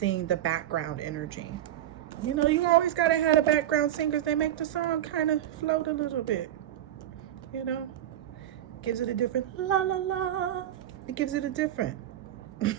the background energy. You know, you always gotta have a background singers. They make the song kind of float a little bit. You know, gives it a different la la la. It gives it a different.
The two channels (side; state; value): left; quieter; 12.2 dB